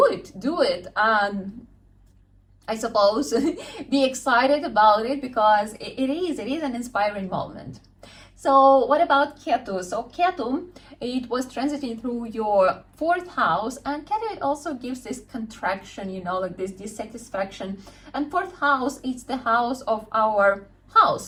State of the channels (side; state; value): both; identical; correlation 1.00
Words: it, and I suppose be excited about it, because it is an inspiring moment. So what about Ketu? So Ketu, it was transiting through your 4th house, and Ketu, it also gives this contraction, you know, like this dissatisfaction. And 4th house, it's the house of our